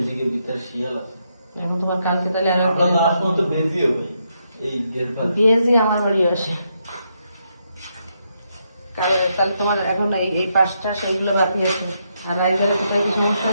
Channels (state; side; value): inverted; both; correlation -0.79